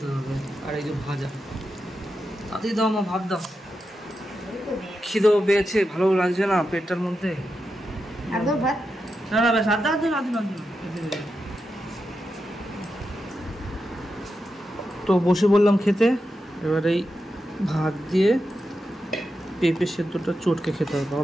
হবে। আর এই যে ভাজা, তাতেই দাও মা, ভাত দাও, খিদেও পেয়েছে, ভালো লাগছে না পেটটার মধ্যে। না না বেশ আধা আধা আধা আধা। তো বসে বললাম খেতে। এবার এই ভাত দিয়ে পেঁপে সেদ্ধটা চটকে খেতে হবে।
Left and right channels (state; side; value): normal; both; correlation 0.88